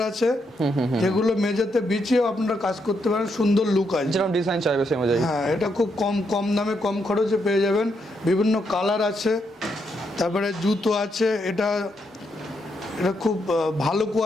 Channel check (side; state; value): both; normal; correlation 0.79